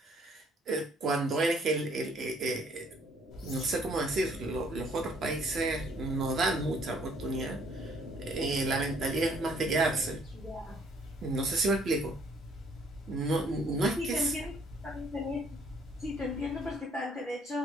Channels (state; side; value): normal; both; correlation 0.63